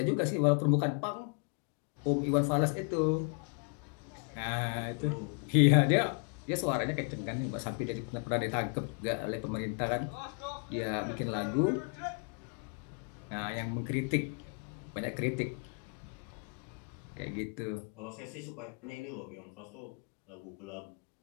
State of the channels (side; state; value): right; quieter; 37.5 dB